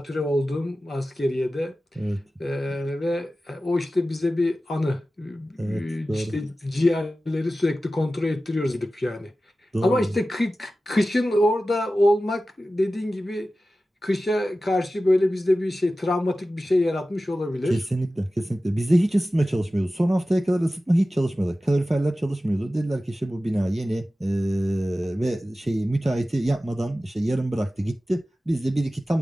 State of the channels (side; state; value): both; normal; correlation 0.95